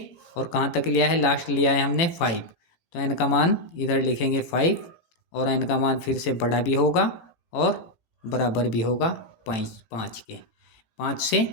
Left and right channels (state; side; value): late; right; 18 ms